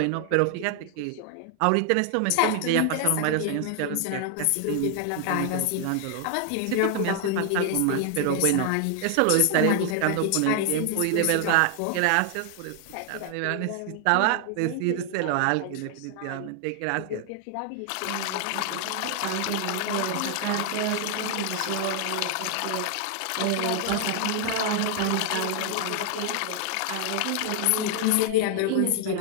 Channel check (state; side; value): different; both; correlation 0.00